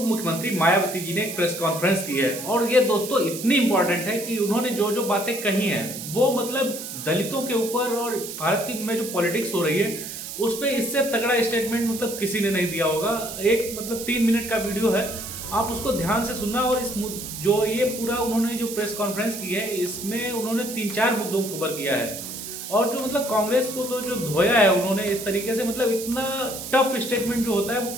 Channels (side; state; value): right; noise; hiss, 9 dB below the sound